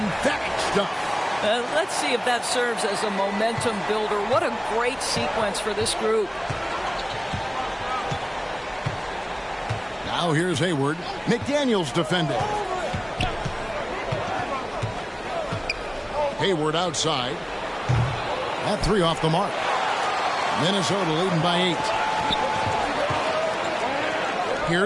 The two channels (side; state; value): both; identical; correlation 1.00